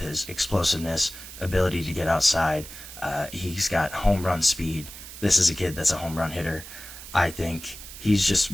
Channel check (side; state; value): right; noise; hiss, 14 dB below the sound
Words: his explosiveness, ability to get outside. He's got home run speed. This is a kid that's a home run hitter. I think he's just